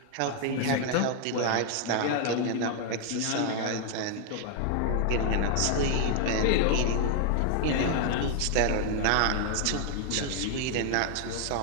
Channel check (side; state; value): both; different; correlation 0.00